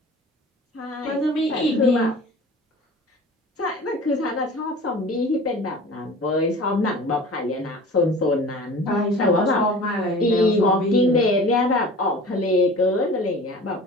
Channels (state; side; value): normal; both; correlation 0.41